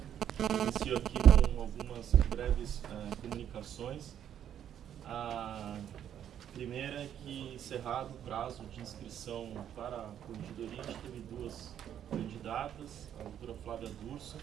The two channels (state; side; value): quieter; left; 9.9 dB